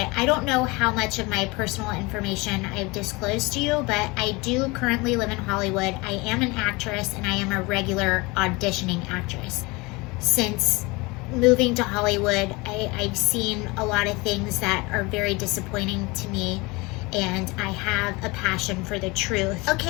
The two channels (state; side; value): quieter; right; 24.8 dB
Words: I don't know how much of my personal information I've disclosed to you, but I do currently live in Hollywood. I am an actress, and I am a regular auditioning actress. Since moving to Hollywood, I've seen a lot of things that are very disappointing to me, and I have a passion for the truth.